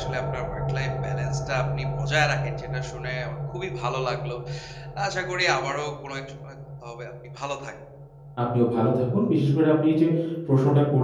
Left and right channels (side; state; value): both; identical; correlation 1.00